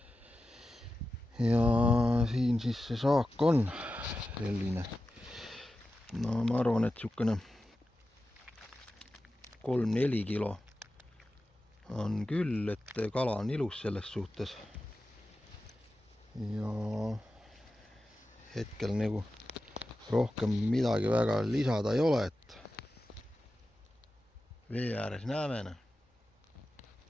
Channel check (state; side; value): normal; both; correlation 0.93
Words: Ja siin siis see saak on selline, no ma arvan, et niisugune 3-4 kilo on küll, et kala on ilus selles suhtes. Ja hetkel nagu rohkem midagi väga lisada ei ole, et vee ääres näeme.